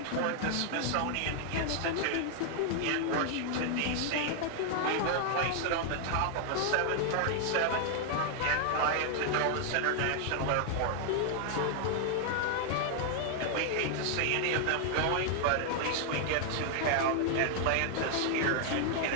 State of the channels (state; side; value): different; both; correlation 0.00